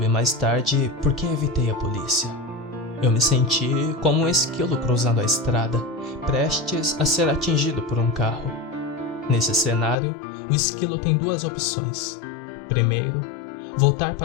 mais tarde por que evitei a polícia. Eu me senti como um esquilo cruzando a estrada, prestes a ser atingido por um carro. Nesse cenário, o esquilo tem duas opções. Primeiro, voltar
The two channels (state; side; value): drops out; right; at 10.0 s